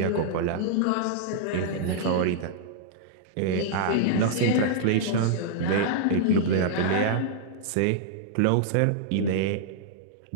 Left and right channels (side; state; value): both; different; correlation -0.02